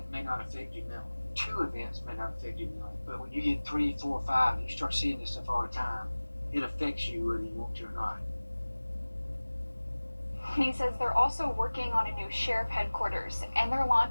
may not affect you mentally. 2 events may not affect you mentally. But when you get 3, 4, 5, and you start seeing this stuff all the time, it affects you whether you want to or not. And he says they're also working on a new sheriff headquarters, and they're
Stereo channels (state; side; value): inverted; both; correlation -1.00